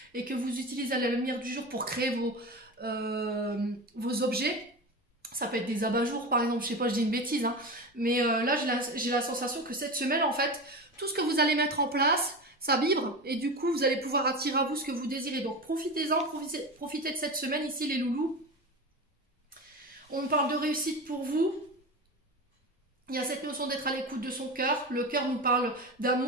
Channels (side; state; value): both; normal; correlation 0.25